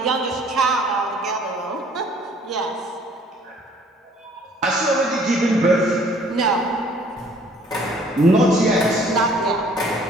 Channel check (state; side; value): normal; both; correlation 0.57